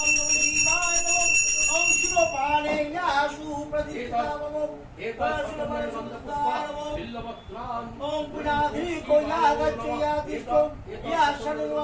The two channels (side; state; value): both; identical; correlation 1.00